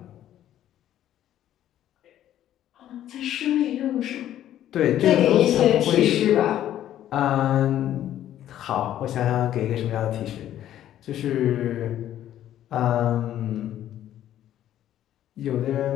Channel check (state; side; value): quieter; right; 11.9 dB